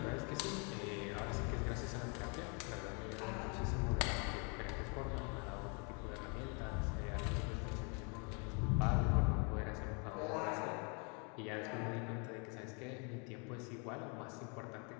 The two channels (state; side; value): quieter; right; 35.2 dB